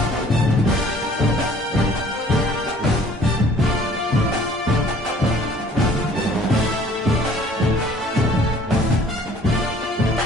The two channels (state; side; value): normal; both; correlation 0.55